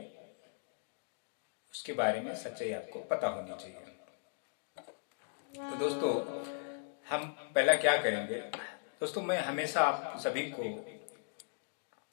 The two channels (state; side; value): silent; right; digital silence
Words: उसके बारे में सच्चाई आपको पता होनी चाहिए। तो दोस्तों, हम पहला क्या करेंगे। दोस्तों, मैं हमेशा आप सभी को